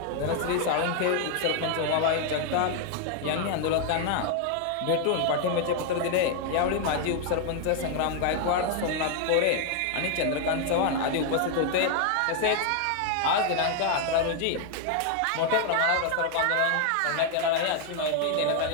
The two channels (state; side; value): different; both; correlation 0.00